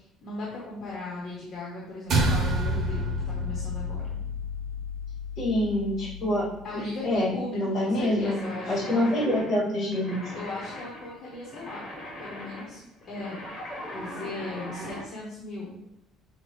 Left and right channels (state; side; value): normal; both; correlation 0.51